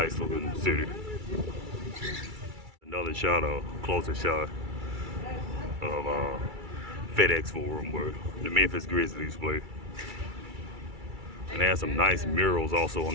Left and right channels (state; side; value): late; left; 2.3 ms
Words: looking city. Another shot, a closer shot of FedEx Forum where the Memphis Grizzlies play. And they have some nice murals also on